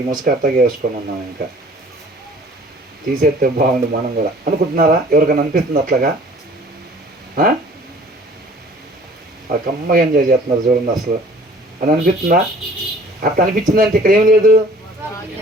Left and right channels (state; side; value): normal; both; correlation 0.51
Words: ముసుగు అట్టగా వేసుకొని ఉన్నాం. ఇంకా తీసేస్తే బాగుండు మనం కూడా అనుకుంటున్నారా? ఎవరికైనా అనిపిస్తుంది అట్లాగా? ఆ కమ్మగా ఎంజాయ్ చేస్తున్నారు చూడండి అసలు అని అనిపిస్తుందా? అట్లా అనిపించిందంటే ఇక్కడ ఏం లేదు,